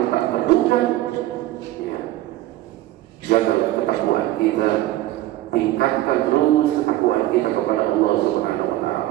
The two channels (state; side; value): quieter; left; 15.6 dB